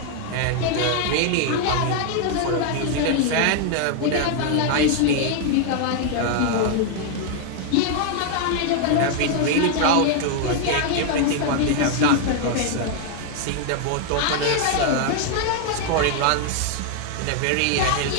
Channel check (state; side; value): different; both; correlation 0.00